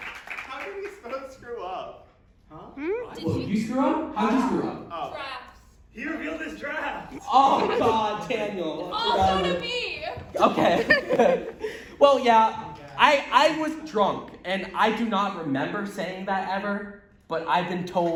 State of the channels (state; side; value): identical; both; correlation 1.00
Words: How did we screw up? Huh? Well, you screw up? How'd you screw up? Oh. Traps. He revealed his draft. Oh God, Daniel. Also to me. Okay. Well, yeah, I was drunk, and I do not remember saying that ever. But I've been